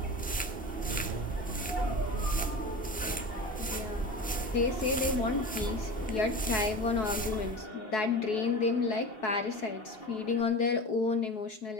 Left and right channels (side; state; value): both; normal; correlation 0.31